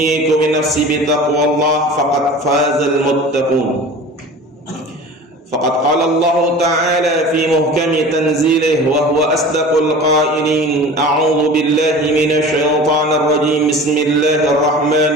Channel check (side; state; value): both; normal; correlation 0.39